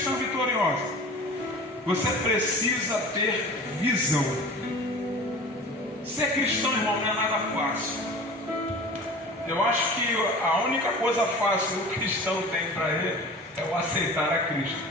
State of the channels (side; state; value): both; normal; correlation 0.39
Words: vitoriosa, você precisa ter visão. Ser cristão, irmão, não é nada fácil. Eu acho que a única coisa fácil que o cristão tem para ele é o aceitar a Cristo.